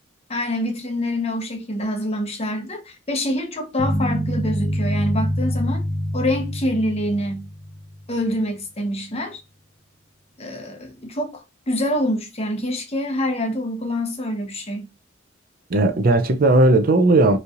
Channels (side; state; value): both; normal; correlation 0.54